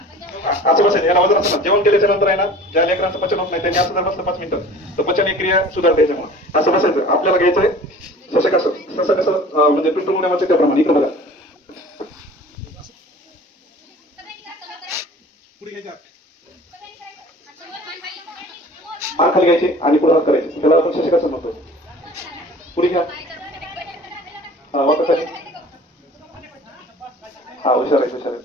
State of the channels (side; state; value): both; normal; correlation 0.44